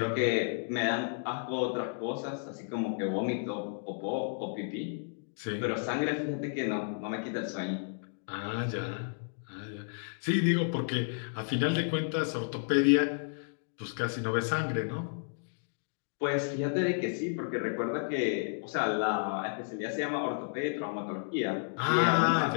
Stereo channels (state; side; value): silent; right; digital silence